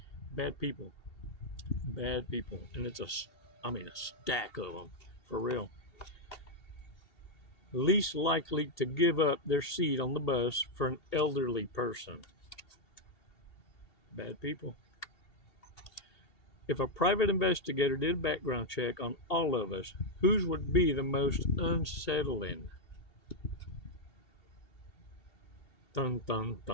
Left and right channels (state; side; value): late; right; 2.7 ms